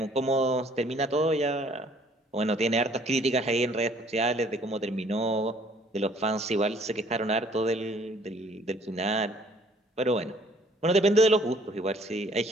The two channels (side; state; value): both; normal; correlation 0.58